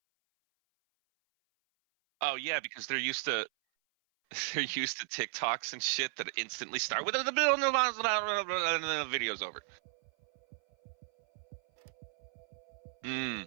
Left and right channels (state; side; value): silent; left; 55 dB below the other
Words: Like, to make sure because they're that, used to yeah. they're used to TikToks and shit that instantly start with the video video's No, over. I think we're used to lag. So we're used to, you hit